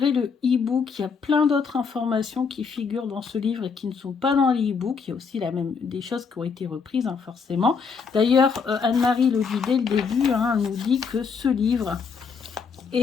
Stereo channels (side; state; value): right; quieter; 5.6 dB